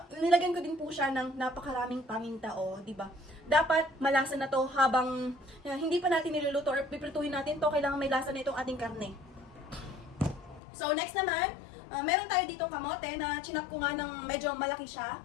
ko din po siya ng napakaraming paminta, di ba? Dapat malasa na to habang hindi pa natin niluluto or piprituhin natin to, kailangan may lasa na itong ating karne. So, next naman, meron tayo ditong kamote na chinap ko nga ng medyo malaki siya.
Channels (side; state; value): right; drops out; at 10.6 s